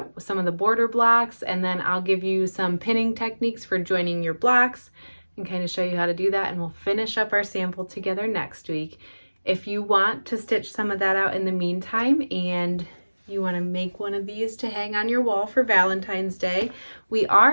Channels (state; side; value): inverted; both; correlation -1.00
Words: some of the border blocks, and then I'll give you some pinning techniques for joining your blocks and kind of show you how to do that, and we'll finish up our sample together next week. If you want to stitch some of that out in the meantime and you want to make one of these to hang on your wall for Valentine's Day, we